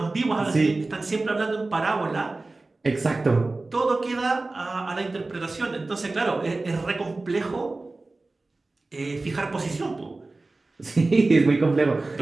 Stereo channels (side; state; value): left; quieter; 3.3 dB